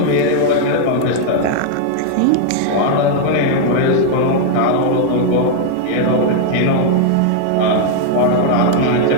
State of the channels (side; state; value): both; different; correlation 0.00